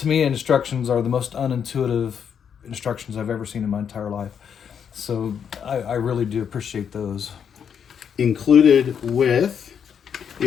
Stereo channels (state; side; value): quieter; right; 7.7 dB